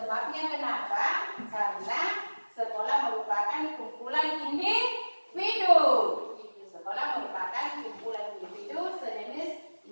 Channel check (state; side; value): inverted; both; correlation -1.00